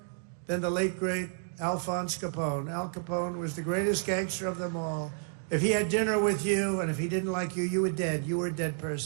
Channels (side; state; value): left; silent; 57 dB below the other